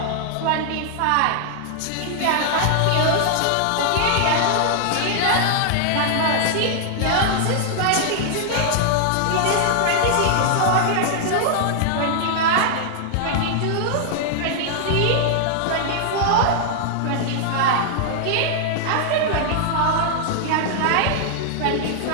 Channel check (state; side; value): different; both; correlation -0.01